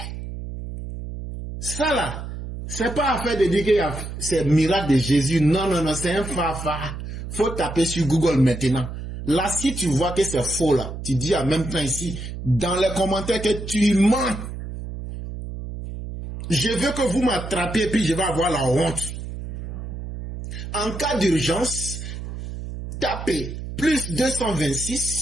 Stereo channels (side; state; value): right; noise; hum, 8 dB below the sound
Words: Ça là, C'est pas affaire de dire que c'est miracle de Jésus. Non, non, non, c'est un fafa. Faut taper sur Google maintenant. Là, si tu vois que c'est faux, là, tu dis en même temps ici, dans les commentaires que tu mens. Je veux que vous m'attrapiez, puis je vais avoir la honte. En cas d'urgence, tapez plus